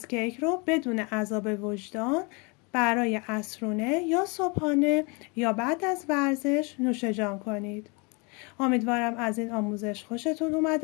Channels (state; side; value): quieter; right; 30.7 dB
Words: رو بدون عذاب وجدان برای عصرونه یا صبحانه یا بعد از ورزش نوش جان کنید. امیدوارم از این آموزش خوشتون